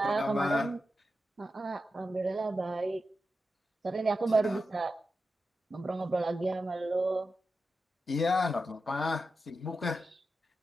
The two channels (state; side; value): normal; both; correlation 0.90